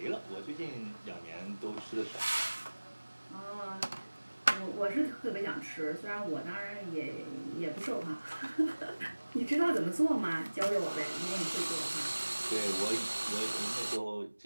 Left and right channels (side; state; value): both; inverted; correlation -1.00